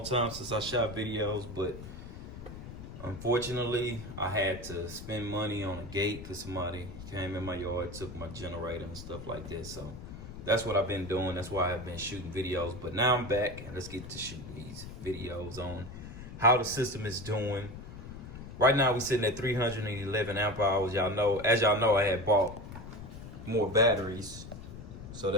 time since I shot videos, but unfortunately, I had to spend money on a gate because somebody came in my yard, took my generator and stuff like that. So that's what I've been doing. That's why I've been shooting videos. But now I'm back, and let's get to shooting these videos on how the system is doing. Right now, we're sitting at 311 amp hours. As y'all know, I had bought more batteries. So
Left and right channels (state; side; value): noise; left; rumble, 12 dB below the sound